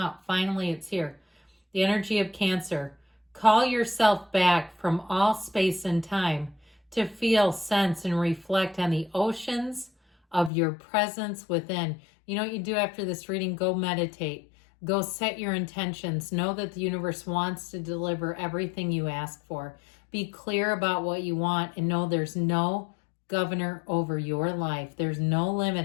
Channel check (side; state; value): right; drops out; at 10.5 s